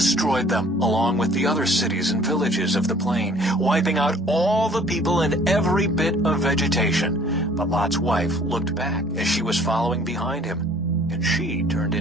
them, along with the other cities and villages of the plain, wiping out all the people and every bit of vegetation. But Lot's wife looked back as she was following behind him, and she turned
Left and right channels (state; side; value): normal; both; correlation 0.54